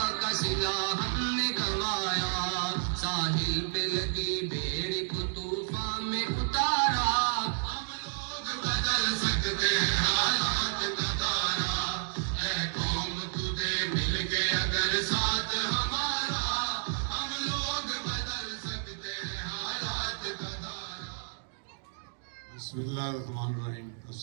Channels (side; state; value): left; silent; digital silence